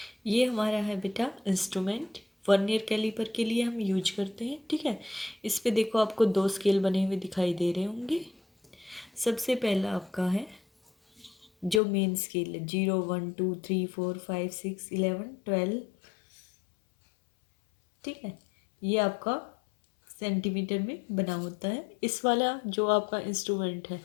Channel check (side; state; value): right; drops out; at 11.8 s